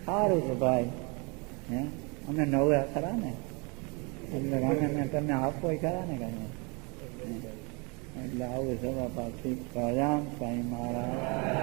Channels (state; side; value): quieter; left; 31.2 dB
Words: સારું છે ભાઈ. અમે નવ્યા ખરા ને, એટલે અમે તમને આપો ખરા ને કાંઈ. એટલે આવું સભા પાછી પ્રજામ સાંઈ મહારાજ.